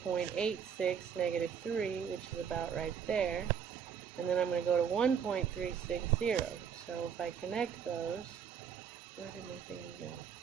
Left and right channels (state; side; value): quieter; left; 7.5 dB